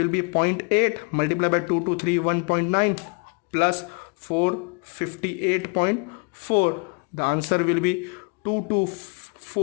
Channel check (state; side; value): quieter; right; 34.8 dB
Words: be 0.8 multiplied by 2231.9 plus 458.4. The answer will be